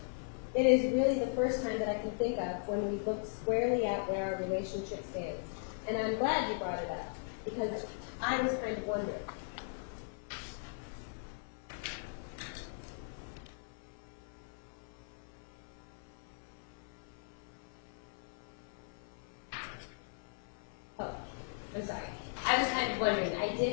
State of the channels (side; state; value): right; silent; 52 dB below the other